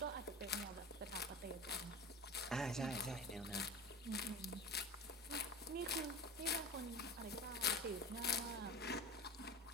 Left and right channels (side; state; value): both; normal; correlation 0.32